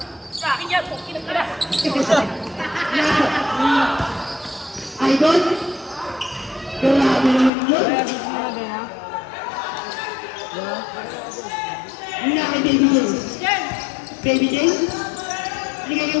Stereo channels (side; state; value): right; drops out; at 7.5 s